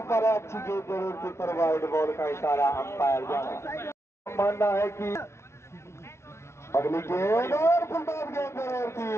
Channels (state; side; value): late; right; 0.13 ms